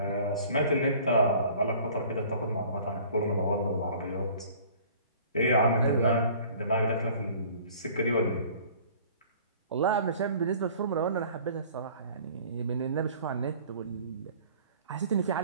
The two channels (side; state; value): both; inverted; correlation -0.49